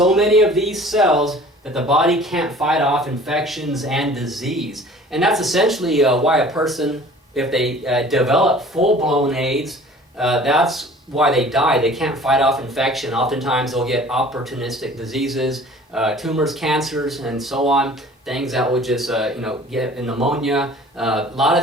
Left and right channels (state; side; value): normal; both; correlation 0.47